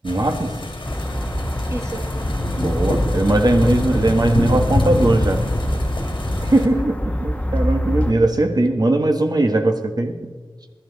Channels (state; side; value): normal; both; correlation 0.91